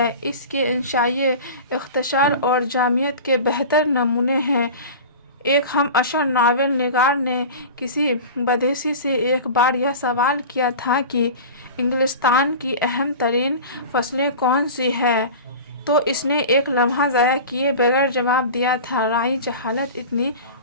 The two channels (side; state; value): both; inverted; correlation -0.34